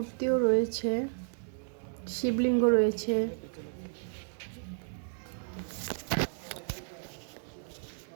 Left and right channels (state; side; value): silent; left; digital silence